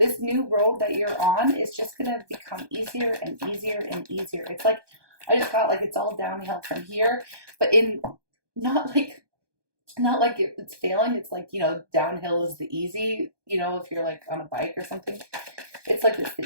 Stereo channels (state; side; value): late; left; 1.2 ms